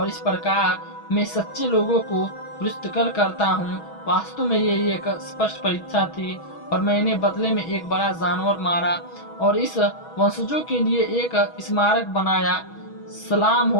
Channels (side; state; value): right; late; 6.2 ms